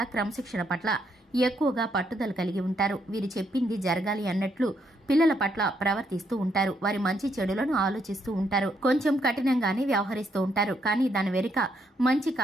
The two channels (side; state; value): both; normal; correlation 0.75